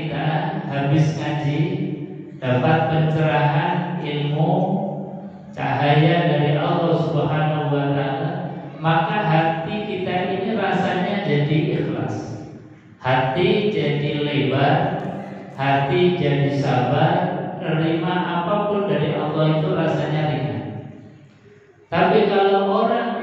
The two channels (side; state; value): both; identical; correlation 1.00